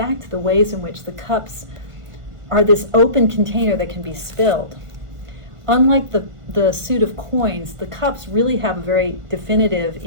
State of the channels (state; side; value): late; left; 1.5 ms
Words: to the ways in which the cups are this open container that can be spilled. Unlike the suit of coins, the cups really have a very definitive,